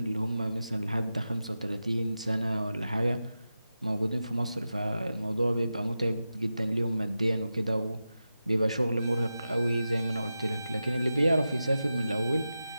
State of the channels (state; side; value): inverted; both; correlation -0.92